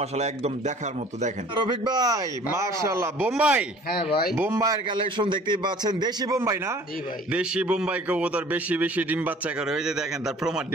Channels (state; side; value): normal; both; correlation 0.50